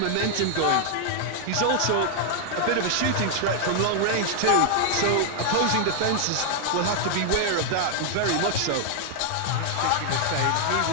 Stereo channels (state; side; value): different; both; correlation 0.00